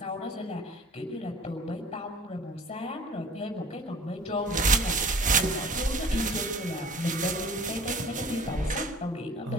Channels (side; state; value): both; normal; correlation 0.45